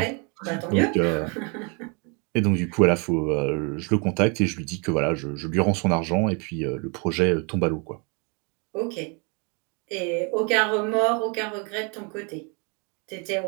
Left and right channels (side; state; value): left; quieter; 34.0 dB